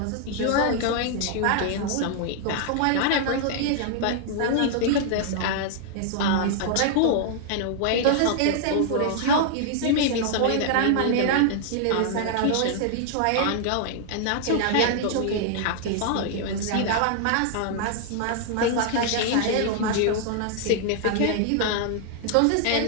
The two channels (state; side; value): different; both; correlation -0.01